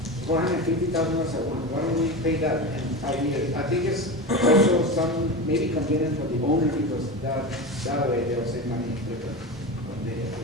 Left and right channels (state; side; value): normal; both; correlation 0.24